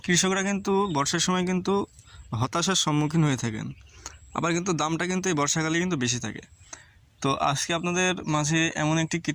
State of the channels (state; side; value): identical; both; correlation 1.00